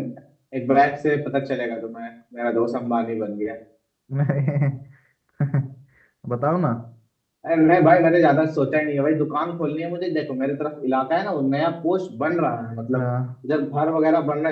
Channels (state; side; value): identical; both; correlation 1.00